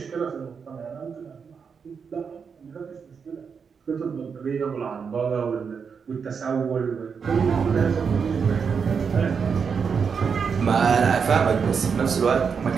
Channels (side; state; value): left; quieter; 6.1 dB